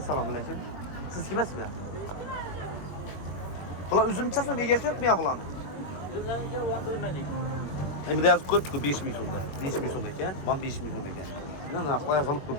alaykum. Siz kimsizmi? Bular üzümçe son egasi yo'qmi ya bularni? Üzümlarga o'ndirmadik. Endi yozib qo'yibdi-ku 5 ming so'mda. 5 ming so'm ekan, mana 5 ming so'm ekan. Yana narxlar yozilib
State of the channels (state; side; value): late; right; 21 ms